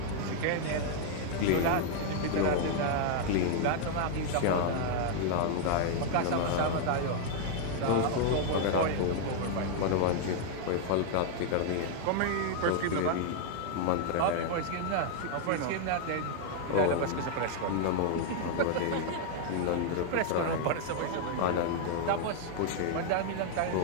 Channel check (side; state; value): both; different; correlation 0.00